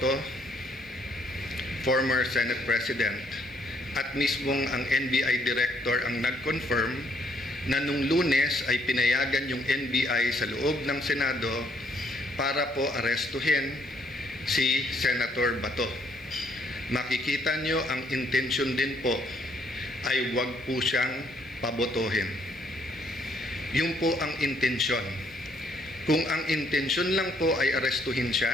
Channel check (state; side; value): noise; right; hiss, 30 dB below the sound